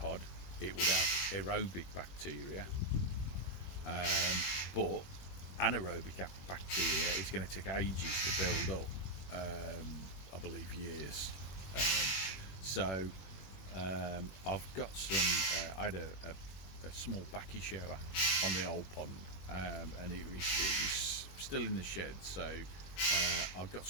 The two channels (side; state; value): right; late; 21 ms